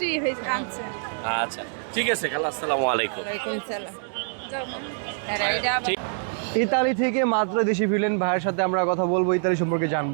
হয়েছে আনছে। আচ্ছা, ঠিক আছে খালা, আসসালামু আলাইকুম। ওয়ালাইকুম সালাম। ইতালি থেকে মাত্র দেশে ফিরলেন ভাইয়ের সাথে আমরা কথা বলবো, ইতালি সম্পর্কে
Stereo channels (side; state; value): left; silent; digital silence